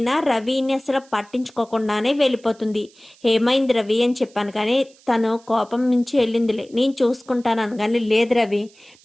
రవిని అసలు పట్టించుకోకుండానే వెళ్ళిపోతుంది. ఏమైంది రవి అని చెప్పాను కానీ తను కోపం నుంచి వెళ్ళిందిలే, నేను చూసుకుంటాను అనగానే లేదు రవి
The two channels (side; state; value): right; noise; hiss, 28 dB below the sound